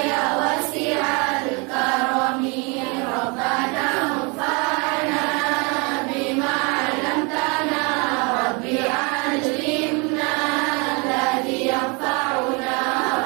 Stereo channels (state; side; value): quieter; left; 30.8 dB